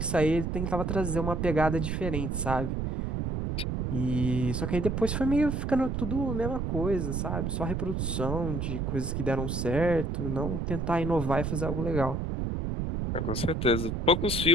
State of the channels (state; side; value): noise; right; rumble, 1 dB below the sound